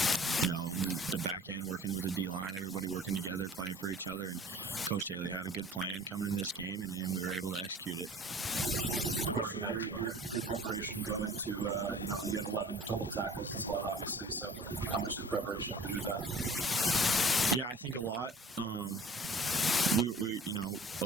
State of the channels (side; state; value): both; normal; correlation 0.48